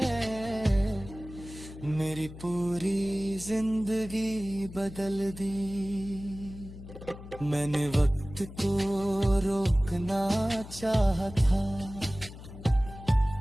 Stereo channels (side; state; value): left; noise; hum, 14 dB below the sound